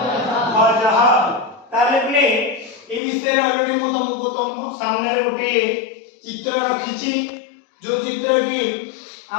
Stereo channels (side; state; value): right; drops out; at 3.0 s